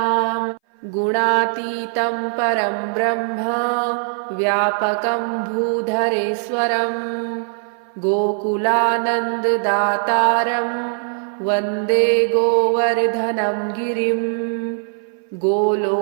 गुणातीतं परं ब्रह्म व्यापकं भूधरेश्वरं गोकुलानन्ददातारं वन्दे गोवर्धनं गिरिं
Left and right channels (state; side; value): silent; left; 61 dB below the other